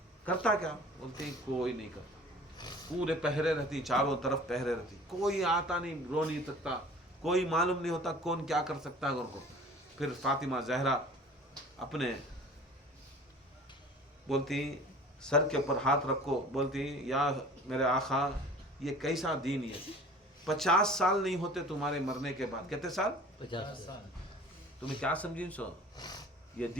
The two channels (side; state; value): both; normal; correlation 0.45